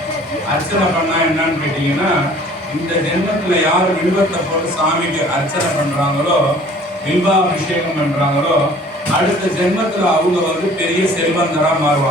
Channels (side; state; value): both; normal; correlation 0.51